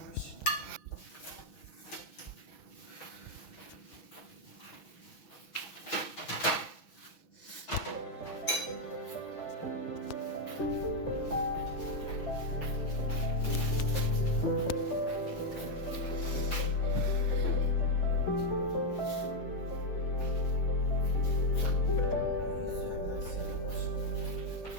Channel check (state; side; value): late; right; 6.1 ms